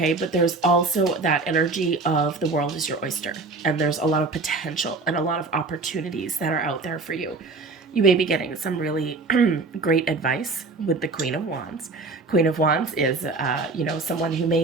But there's also that energy of the world is your oyster, and there's a lot of potential and a lot of opportunities that are out there for you. You may be getting some really great advice with the Queen of Wands. Queen of Wands is, someone who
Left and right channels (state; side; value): quieter; left; 3.7 dB